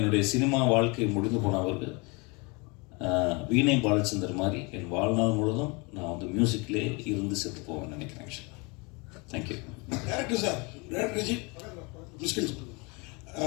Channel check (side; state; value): right; quieter; 29.0 dB